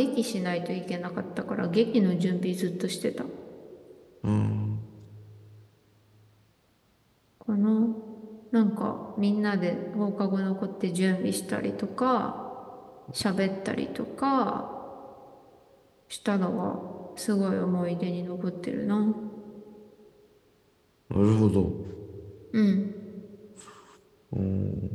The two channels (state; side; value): identical; both; correlation 1.00